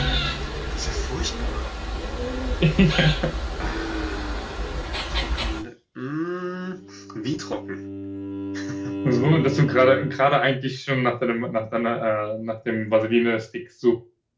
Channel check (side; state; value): both; identical; correlation 1.00